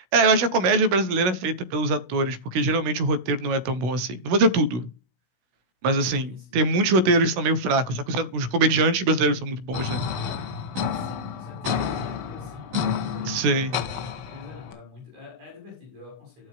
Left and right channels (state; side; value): late; left; 16 ms